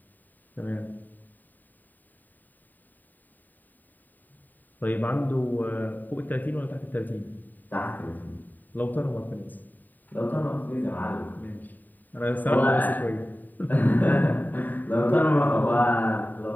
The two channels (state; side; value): late; right; 0.087 ms